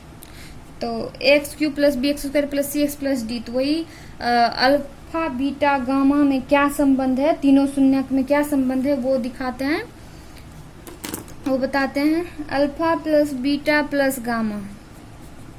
तो ax³ plus bx² plus cx plus d। तो वही अल्फा बीटा गामा में क्या संबंध है, तीनों शून्यक में क्या संबंध है वो दिखाते हैं, वो बताते हैं। Alpha plus beta plus gamma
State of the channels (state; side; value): identical; both; correlation 1.00